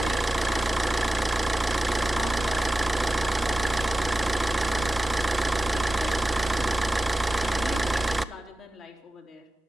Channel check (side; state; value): both; normal; correlation 0.94